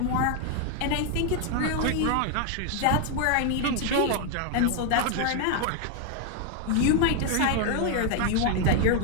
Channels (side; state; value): both; different; correlation 0.00